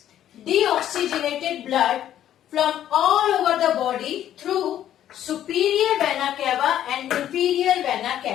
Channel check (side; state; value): right; quieter; 11.3 dB